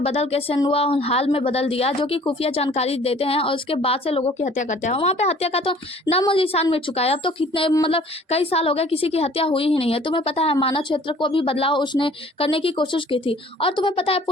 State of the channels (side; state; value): both; normal; correlation 0.53